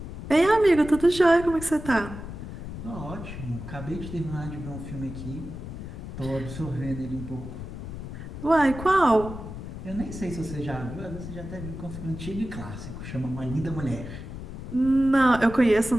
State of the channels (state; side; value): noise; left; rumble, 9 dB below the sound